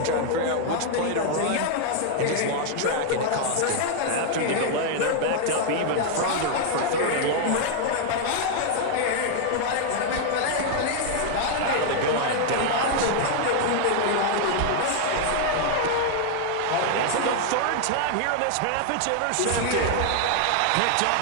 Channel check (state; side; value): different; both; correlation 0.00